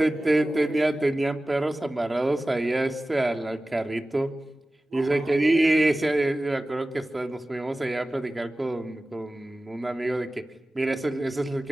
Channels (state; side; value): normal; both; correlation 0.96